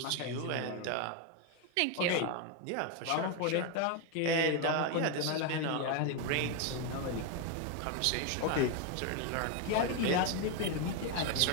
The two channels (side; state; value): both; different; correlation 0.01